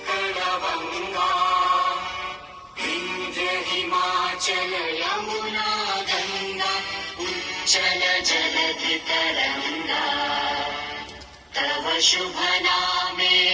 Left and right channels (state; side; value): identical; both; correlation 1.00